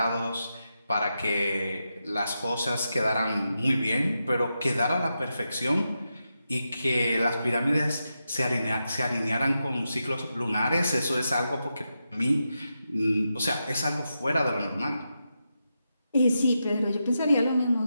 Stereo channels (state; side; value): inverted; both; correlation -0.87